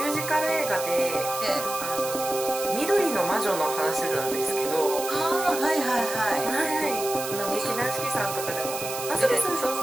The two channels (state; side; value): noise; right; hiss, 7 dB below the sound